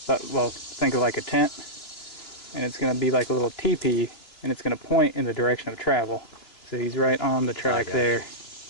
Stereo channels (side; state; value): right; late; 3.0 ms